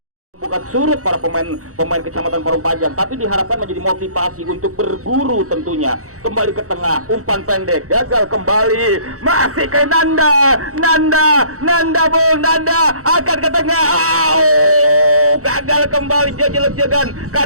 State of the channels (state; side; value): late; left; 0.65 ms